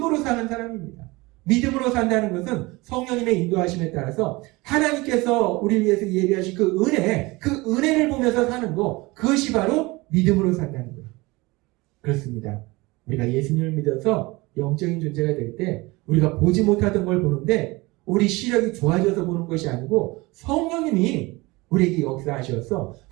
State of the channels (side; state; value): left; quieter; 22.8 dB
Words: 사는 사람입니다. 믿음으로 산다는 것은 성령님의 인도하심에 따라서 하나님께서 우리를 위해서 예비하신 그 은혜를 보면서 사는 거, 그것이 바로 믿음으로 산다는 거예요. 그렇습니다. 우리가 예수님을 믿어서 영적인 존재가 될 때 우리가 보지 못하던 걸 보는데 우리 시력이 좋아져서 보는 것이 아니고 성령님이 우리에게 역사하셔서